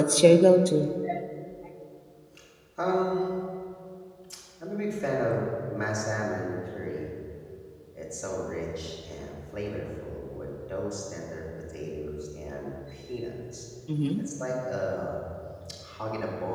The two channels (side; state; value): both; identical; correlation 1.00